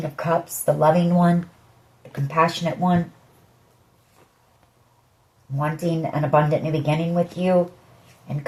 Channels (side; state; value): both; identical; correlation 1.00